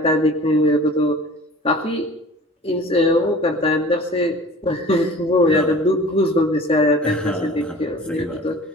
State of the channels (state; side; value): normal; both; correlation 0.44